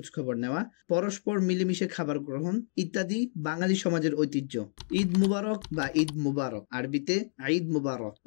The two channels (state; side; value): silent; right; digital silence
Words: খবর নেওয়া, পরস্পর মিলেমিশে খাবার গ্রহণ ইত্যাদি বাঙালি সমাজের ঐতিহ্য। ঈদ মুবারক বা ঈদ মুবারক, আরবিতে ঈদ মুবারক,